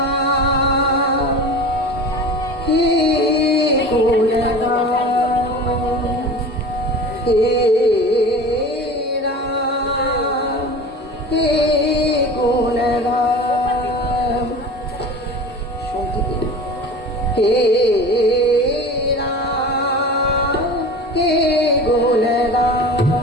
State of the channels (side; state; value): both; normal; correlation 0.35